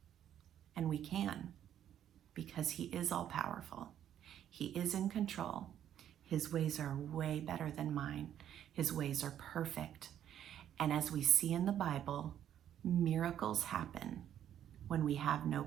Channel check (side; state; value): left; quieter; 10.4 dB